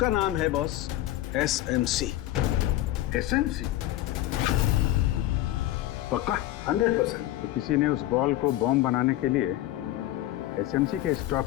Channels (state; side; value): quieter; right; 14.9 dB